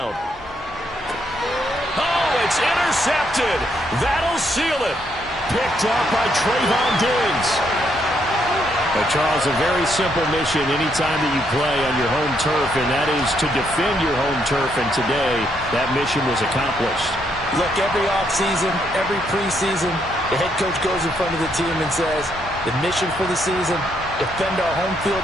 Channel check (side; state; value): both; normal; correlation 0.74